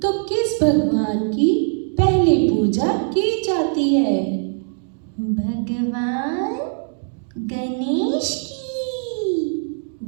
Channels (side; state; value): left; silent; digital silence